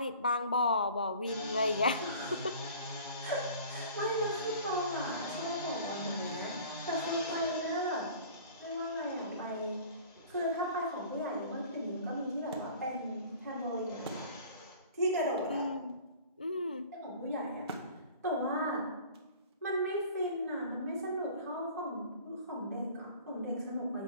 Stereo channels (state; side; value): inverted; both; correlation -0.45